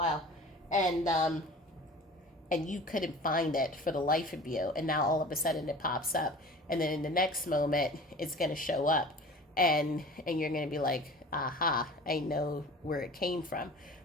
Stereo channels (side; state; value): both; normal; correlation 0.41